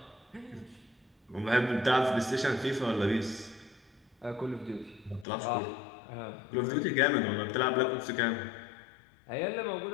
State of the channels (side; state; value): right; drops out; at 5.2 s